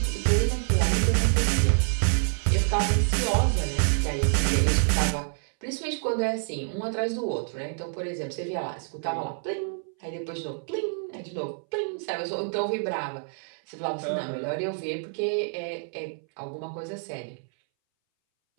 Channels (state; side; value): silent; left; 60 dB below the other